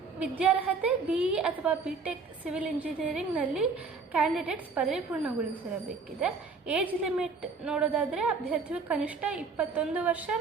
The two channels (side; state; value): left; quieter; 4.6 dB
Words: ವಿದ್ಯಾರ್ಹತೆ BE ಅಥವಾ BTech ಸಿವಿಲ್ ಇಂಜಿನಿಯರಿಂಗ್ನಲ್ಲಿ ಕ್ಯಾಂಡಿಡೇಟ್ಸ್ ಪದವಿ ಪೂರ್ಣಗೊಳಿಸಿರಬೇಕಿದೆ. ಏಜ್ ಲಿಮಿಟ್ ನೋಡೋದಾದರೆ ಅಭ್ಯರ್ಥಿಯು ಕನಿಷ್ಠ 21 ವರ್ಷ